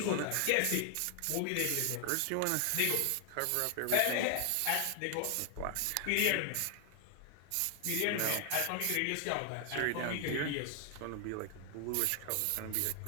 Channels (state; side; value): different; both; correlation 0.00